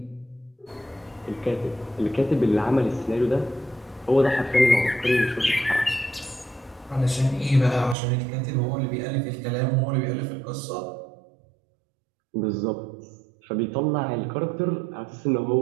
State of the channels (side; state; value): left; drops out; at 8.0 s